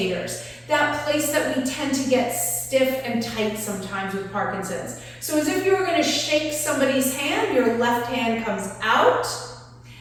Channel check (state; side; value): identical; both; correlation 1.00